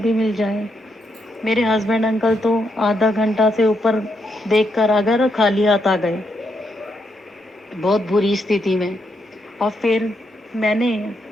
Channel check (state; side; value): normal; both; correlation 0.79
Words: मिल जाए। मेरे हस्बैंड अंकल तो आधा घंटा से ऊपर देख कर आ गए और खाली हाथ आ गए, बहुत बुरी स्थिति में। और फिर मैंने